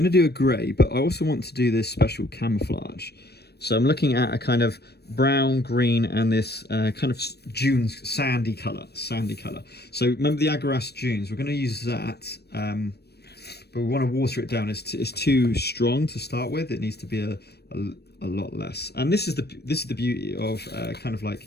to do a grey, but I also want to do this special camouflage. So I'm looking at a kind of brown, green, and this kind of dunes, sandy colour. So remember the Aggaros Dunes? We're going to use that, but we want to water it down. It's too strong to start with. It needs to be a lot less. And this is the beauty of kind of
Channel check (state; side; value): late; right; 0.47 ms